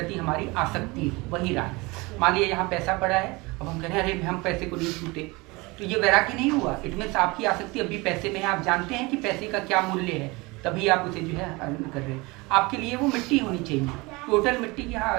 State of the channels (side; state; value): left; quieter; 24.3 dB